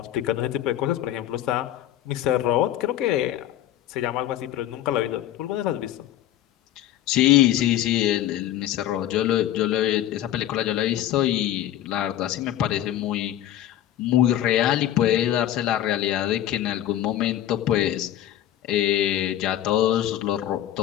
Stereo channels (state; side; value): quieter; right; 12.5 dB